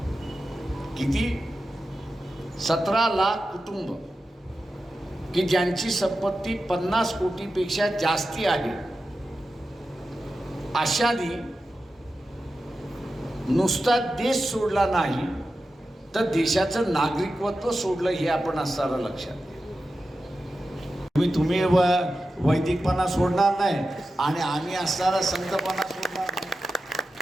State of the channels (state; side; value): normal; both; correlation 0.92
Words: किती? 17 लाख कुटुंब की ज्यांची संपत्ती 50 कोटीपेक्षा जास्ती आहे अशानी नुसता देश सोडला नाही तर देशाचं नागरिकत्व सोडलं हे आपण असताना लक्षात घ्या. तुम्ही वैदिकपणा सोडणार नाही आणि आम्ही असताना संतपणा सोडणार नाही.